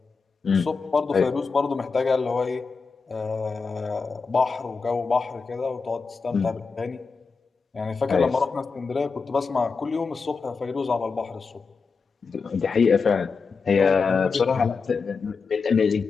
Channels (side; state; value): right; quieter; 4.9 dB